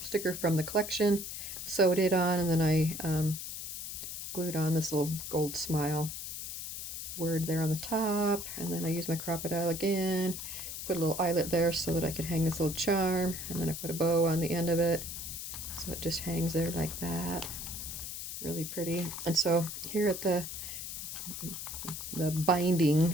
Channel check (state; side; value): noise; left; hiss, 7 dB below the sound